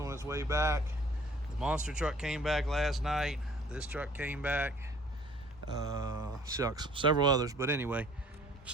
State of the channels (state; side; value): normal; both; correlation 0.55